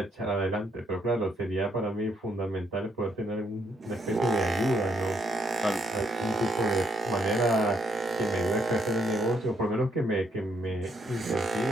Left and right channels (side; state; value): both; normal; correlation 0.73